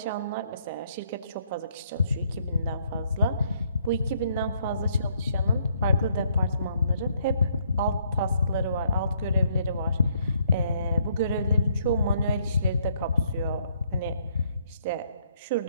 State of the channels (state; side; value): inverted; both; correlation -0.69